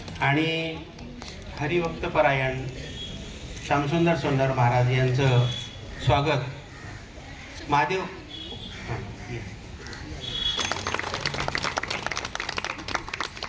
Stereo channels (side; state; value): both; identical; correlation 1.00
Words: आणि हरिभक्तपरायण श्यामसुंदर सोन्नर महाराज यांचं स्वागत महादेव